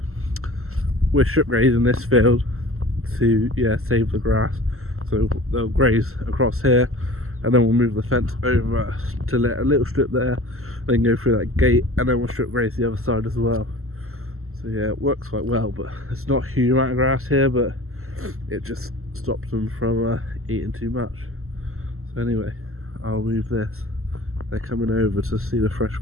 strip grazing this field to save the grass. So they'll graze across here, and then we'll move the fence over to let a little strip there, then go through that gate, and then we'll strip graze the other side as well. So yeah, it works quite well, but it's not a huge amount of grass here, but it just stops them from eating too much. So anyway, I'll move this. They're coming over to see the fresh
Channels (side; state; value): left; late; 0.62 ms